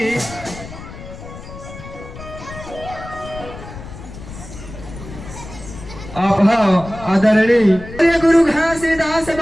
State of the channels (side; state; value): left; noise; rumble, 13 dB below the sound